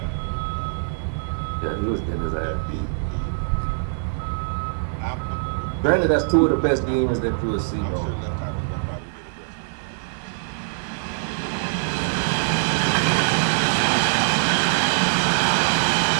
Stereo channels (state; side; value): silent; left; digital silence